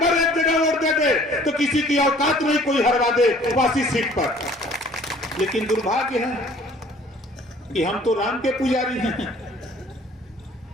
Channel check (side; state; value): both; normal; correlation 0.54